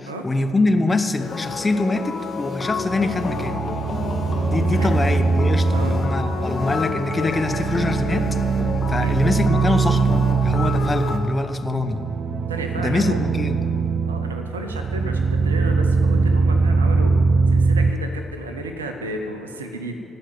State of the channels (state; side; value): normal; both; correlation 0.83